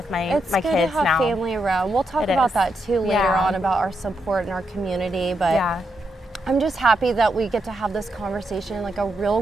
my kids now. It's good to have family around. We'll talk about that too later on, about our support and our community. But I'm just happy that we get to have this conversation, like a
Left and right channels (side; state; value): both; normal; correlation 0.83